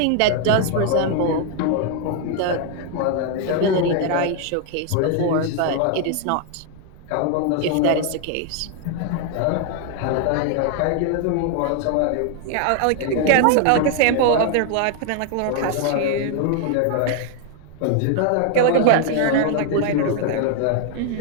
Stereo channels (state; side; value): different; both; correlation 0.00